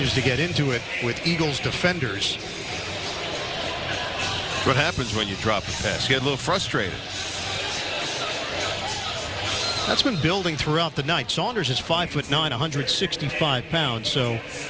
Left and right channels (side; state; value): both; identical; correlation 1.00